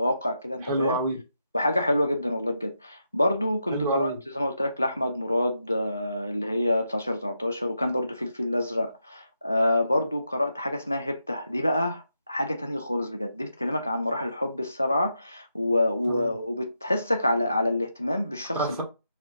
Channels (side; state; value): both; inverted; correlation -0.84